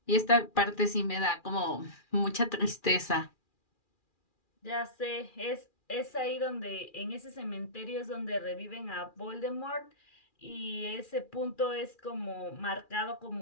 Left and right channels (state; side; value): late; right; 2.4 ms